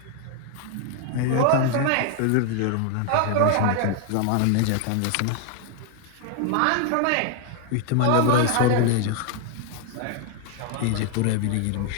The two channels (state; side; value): different; both; correlation 0.00